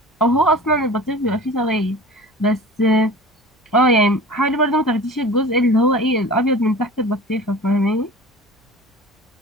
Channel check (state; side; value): normal; both; correlation 0.38